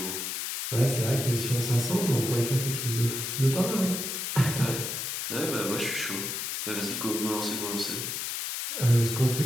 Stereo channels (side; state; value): left; noise; hiss, 3 dB below the sound